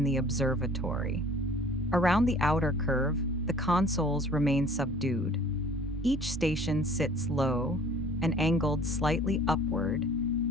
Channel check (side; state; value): both; normal; correlation 0.51